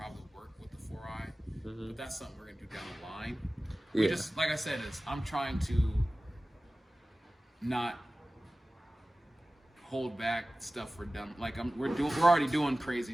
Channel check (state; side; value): normal; both; correlation 0.96